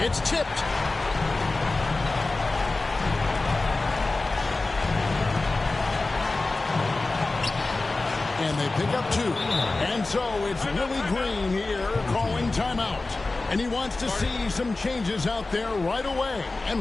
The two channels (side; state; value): right; quieter; 3.3 dB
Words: It's tipped. And they pick up 2. And so it's Willie Green here calling timeout. And he wants to see some changes out there right away